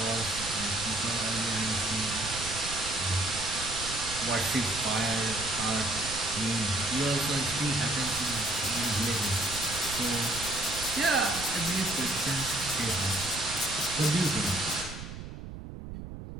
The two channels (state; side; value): noise; right; rumble, 10 dB below the sound